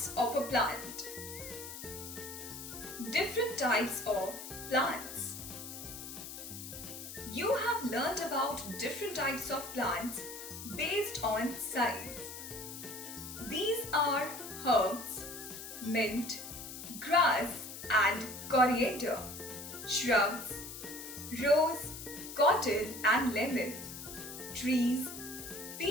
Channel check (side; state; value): left; noise; hiss, 10 dB below the sound